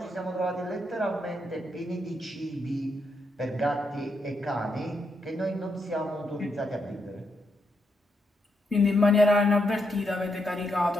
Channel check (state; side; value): normal; both; correlation 0.80